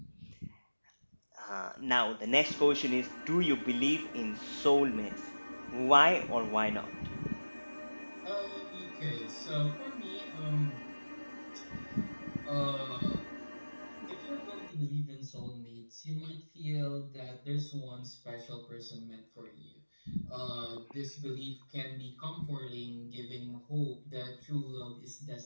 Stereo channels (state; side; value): inverted; both; correlation -1.00